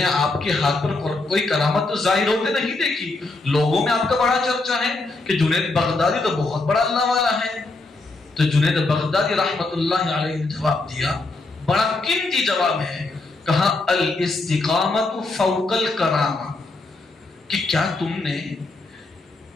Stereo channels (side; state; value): right; quieter; 3.3 dB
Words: آپ کے ہاتھ پر کوئی کرامت تو ظاہر ہوتے نہیں دیکھی، لوگوں میں آپ کا بڑا چرچا ہے کہ جنید بغدادی تو بہت بڑا اللہ والا ہے۔ تو جنید بغدادی رحمت اللہ علیہ نے جواب دیا، بڑا قیمتی جواب ہے، کہا الاستقامت فوق الکرامہ، کہ کیا تم نے